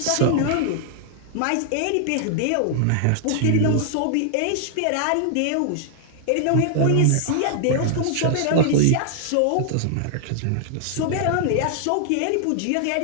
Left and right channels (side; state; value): both; different; correlation 0.00